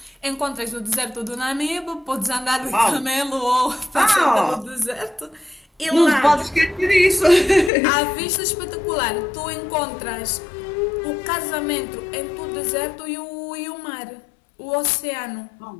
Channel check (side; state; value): right; drops out; at 7.7 s